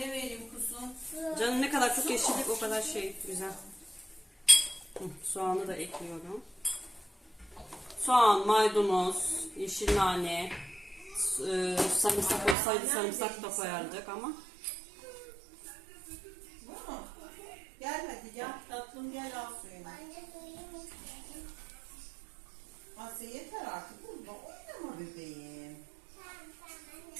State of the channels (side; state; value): left; drops out; at 12.6 s